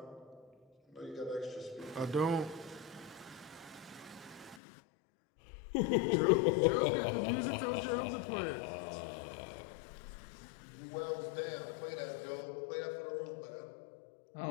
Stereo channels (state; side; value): drops out; right; at 4.6 s